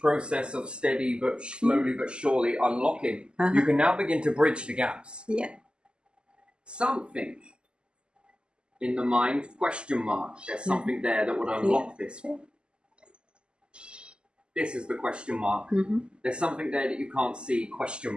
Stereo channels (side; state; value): left; late; 0.050 ms